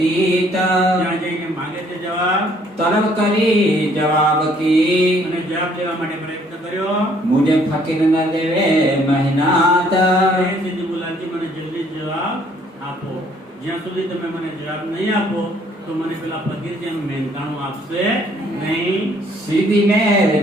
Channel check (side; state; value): both; normal; correlation 0.63